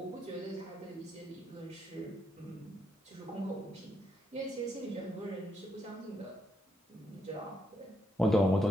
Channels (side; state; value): both; normal; correlation 0.78